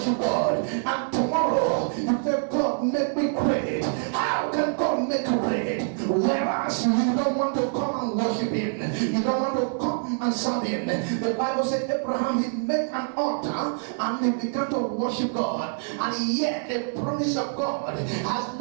God. And tomorrow, you say, God, make me great. How can God make you great? Whereas you don't want to come and worship him. You don't want to come and serve him. The Bible said Abraham, he made an altar and he began to worship God. And yet the promise of God has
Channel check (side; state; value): left; silent; 59 dB below the other